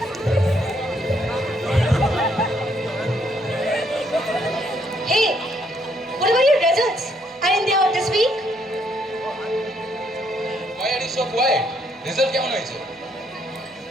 Hey, what about your results? Aren't they out this week? Why are you so quiet? Result কেমন হয়েছে?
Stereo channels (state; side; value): normal; both; correlation 0.71